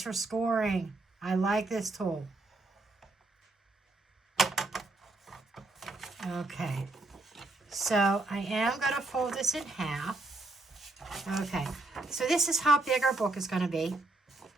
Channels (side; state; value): left; quieter; 3.1 dB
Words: for scoring. I like this tool. Okay. So I am going to fold this in half. Okay. So this is how big our book is going to be.